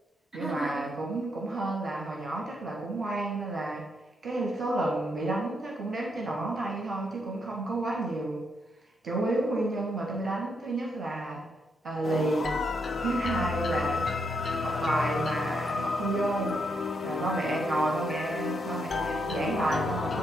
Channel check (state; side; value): normal; both; correlation 0.78